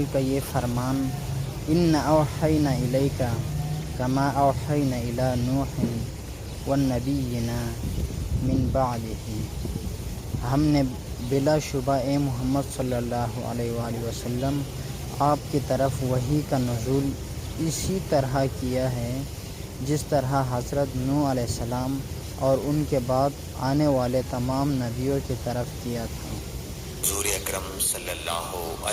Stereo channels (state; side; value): identical; both; correlation 1.00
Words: کا یہ فرمان ان اوحینا الیک کما اوحینا الی نوح والنبیین من بعدہ، ہم نے بلا شبہ اے محمد صلی اللہ علیہ وآلہ وسلم آپ کی طرف وحی کا نزول اسی طرح کیا ہے جس طرح حضرت نوح علیہ السلام اور ان کے بعد آنے والے تمام نبیوں کی طرف کیا تھا۔ حضور اکرم صلی اللہ